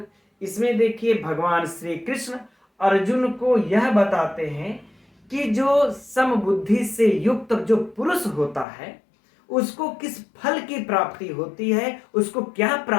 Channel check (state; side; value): drops out; right; at 8.7 s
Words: इसमें देखिए भगवान श्री कृष्ण अर्जुन को यह बताते हैं कि जो समबुद्धि से युक्त जो पुरुष होता है उसको किस फल की प्राप्ति होती है, उसको क्या